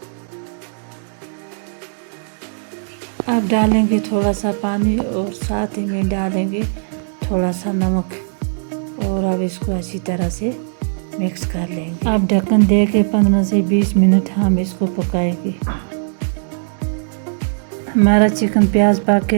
अब डालेंगे थोड़ा सा पानी और साथ ही में डालेंगे थोड़ा सा नमक और अब इसको अच्छी तरह से मिक्स कर लेंगे। अब ढक्कन दे के 15 से 20 मिनट हम इसको पकाएंगे। हमारा चिकन प्याज पक के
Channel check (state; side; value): silent; left; digital silence